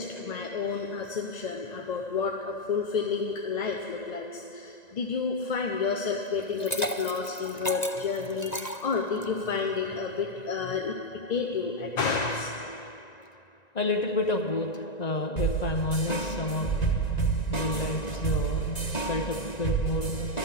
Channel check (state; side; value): late; right; 1.9 ms